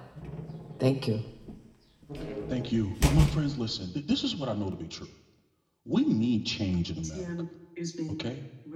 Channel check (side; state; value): both; identical; correlation 1.00